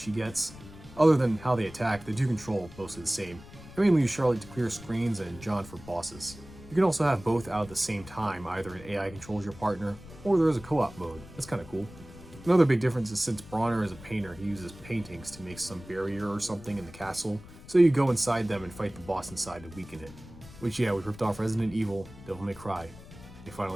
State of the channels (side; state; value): left; noise; rumble, 18 dB below the sound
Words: gets. Other than how they attack, the two control mostly the same. I mainly use Charlotte to clear screens and John for bosses. You can also have both out at the same time, either an AI controls your partner, or there is a co-op mode. That's kinda cool. Another big difference is since Bronner is a painter, he uses paintings to make some barrier or something in the castle, So you go inside them and fight the boss inside to weaken it. Which, yeah, we ripped off Resident Evil, Devil May Cry. They